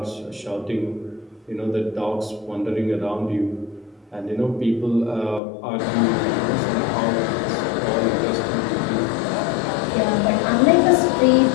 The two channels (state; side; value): drops out; right; at 5.4 s